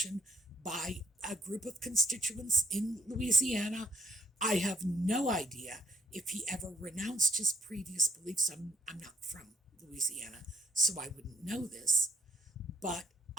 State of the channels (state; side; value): normal; both; correlation 0.66